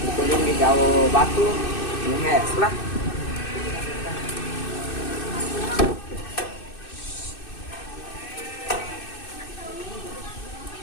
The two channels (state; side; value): late; right; 2.6 ms